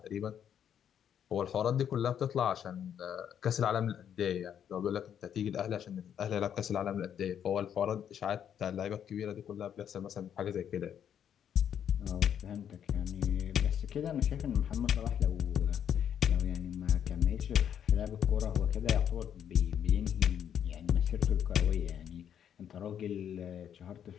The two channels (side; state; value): right; quieter; 9.0 dB